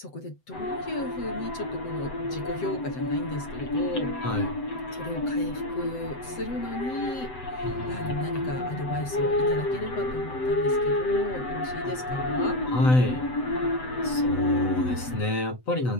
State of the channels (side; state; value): right; late; 7.9 ms